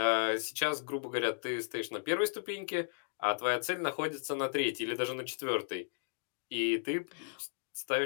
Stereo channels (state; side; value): silent; right; digital silence